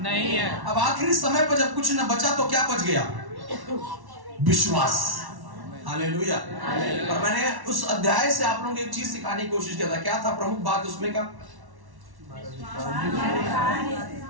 है। अब आखिरी समय पर जब कुछ न बचा तो क्या बच गया? विश्वास। हालेलुया। और मैंने उस अध्याय से आप लोगों को एक चीज सिखाने की कोशिश किया था। क्या था प्रमुख बात उसमें का?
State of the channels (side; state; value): left; late; 1.1 ms